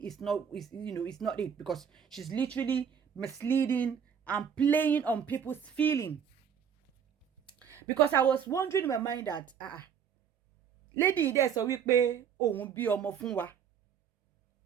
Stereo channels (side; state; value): left; quieter; 7.7 dB